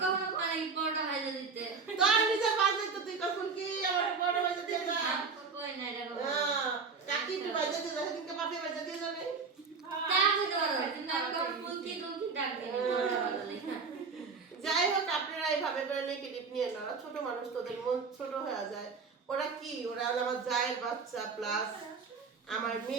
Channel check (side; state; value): left; quieter; 5.0 dB